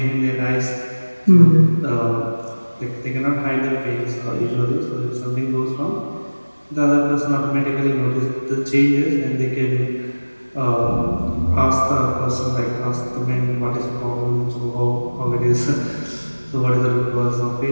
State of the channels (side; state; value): both; inverted; correlation -1.00